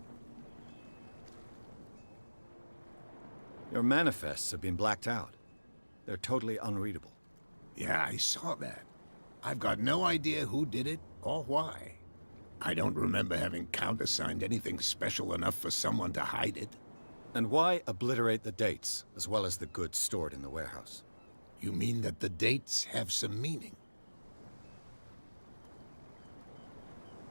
Your manifests have been blacked out. They're totally unreadable. Yeah, I saw that. I've got no idea who did it or why. I don't remember having countersigned anything special enough for someone to hide it. And why obliterate the dates, as well as the goods stored in the warehouse? You mean that the dates have some meaning?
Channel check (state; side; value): inverted; both; correlation -1.00